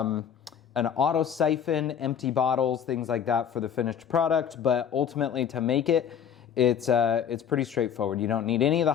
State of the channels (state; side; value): quieter; right; 8.4 dB